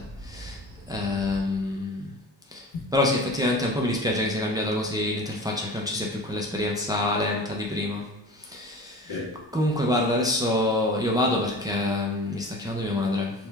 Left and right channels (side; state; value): both; normal; correlation 0.38